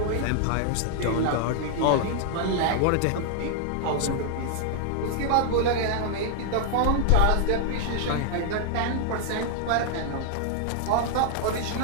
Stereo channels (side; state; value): both; different; correlation 0.00